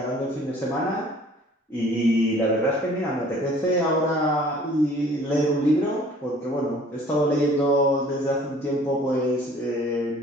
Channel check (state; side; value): normal; both; correlation 0.52